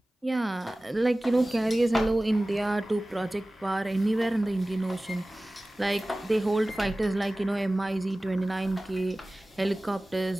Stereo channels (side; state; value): both; normal; correlation 0.98